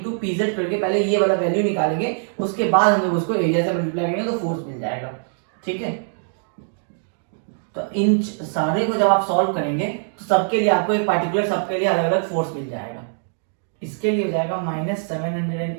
PZ करके पहले ये वाला वैल्यू निकालेंगे, उसके बाद हम लोग उसको एरिया से मल्टीप्लाई करेंगे तो फोर्स मिल जाएगा, ठीक है। तो इन सारे को जब आप सॉल्व करेंगे तो सबके लिए आपको एक पार्टिकुलर सबके लिए अलग अलग फोर्स मिल जाएगा। इसके लिए हो जाएगा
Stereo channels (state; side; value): silent; left; digital silence